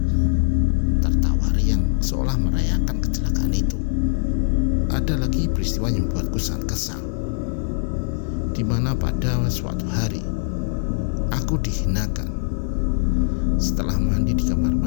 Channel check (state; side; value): silent; right; 64 dB below the other